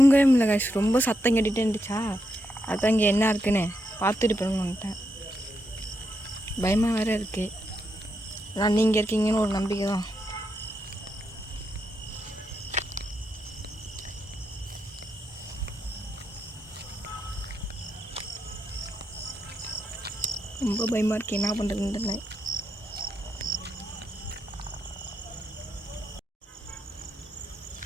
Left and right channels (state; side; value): normal; both; correlation 0.82